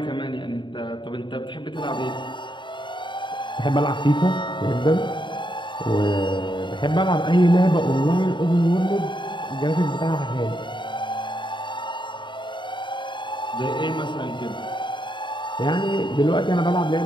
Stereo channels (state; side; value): late; right; 0.23 ms